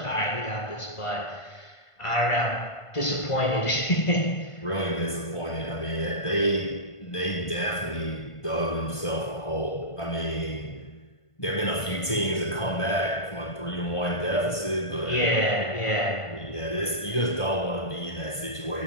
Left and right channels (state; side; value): late; right; 1.5 ms